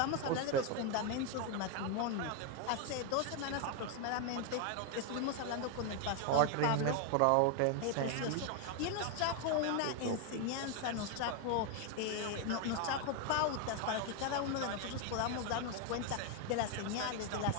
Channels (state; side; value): different; both; correlation 0.01